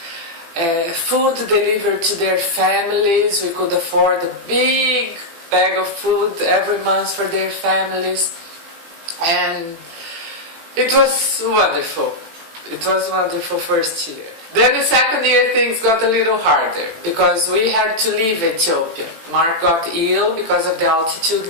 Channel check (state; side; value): late; left; 18 ms